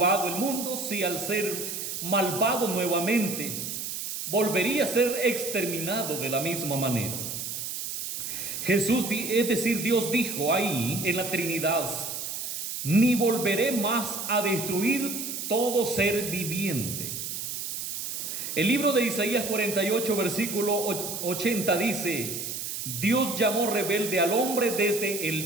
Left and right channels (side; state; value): right; noise; hiss, 5 dB below the sound